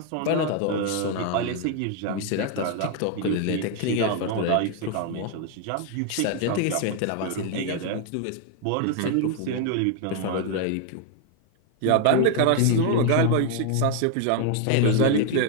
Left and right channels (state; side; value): different; both; correlation 0.00